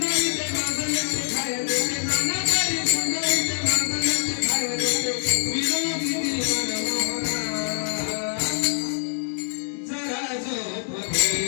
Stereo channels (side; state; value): right; silent; digital silence